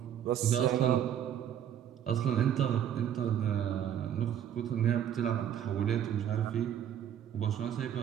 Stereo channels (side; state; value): left; quieter; 9.9 dB